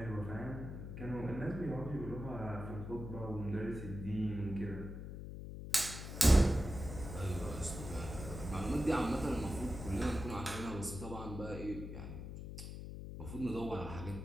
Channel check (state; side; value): noise; left; hum, 8 dB below the sound